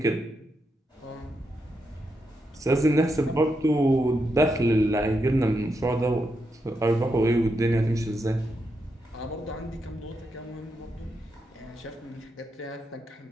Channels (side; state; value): both; normal; correlation 0.83